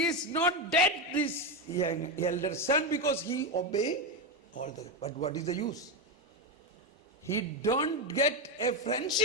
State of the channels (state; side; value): normal; both; correlation 0.10